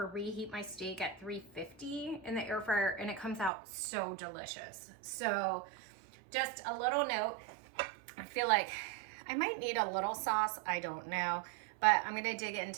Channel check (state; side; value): drops out; left; at 3.5 s